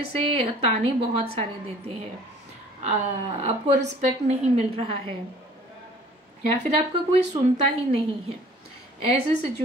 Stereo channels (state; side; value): normal; both; correlation 0.51